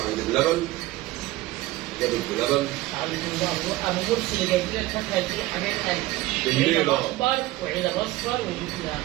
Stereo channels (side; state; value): left; quieter; 18.0 dB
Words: عند بلبن، جابت بلبن. ابو مرسي اللي جايب لنا الفاكهه دي يا حبايب قلبي، عنب اخضر وعنب اصفر وجبنا